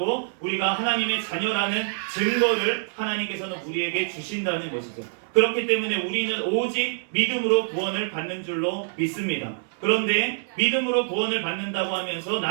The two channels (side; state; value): left; silent; digital silence